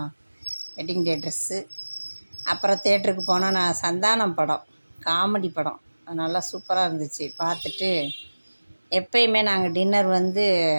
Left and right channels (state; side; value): inverted; both; correlation -1.00